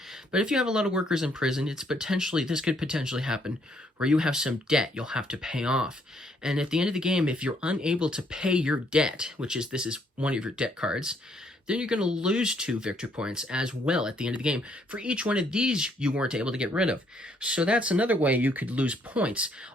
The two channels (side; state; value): both; normal; correlation 0.69